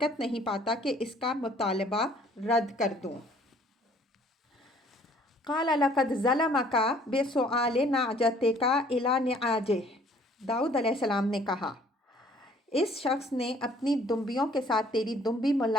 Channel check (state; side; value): normal; both; correlation 0.57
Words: نہیں پاتا کہ اس کا مطالبہ رد کر دوں۔ قال لقد ظلمک بسؤال نعجتک الی نعاجہ، داؤد علیہ السلام نے کہا اس شخص نے اپنی دمبیوں کے ساتھ تیری دمبی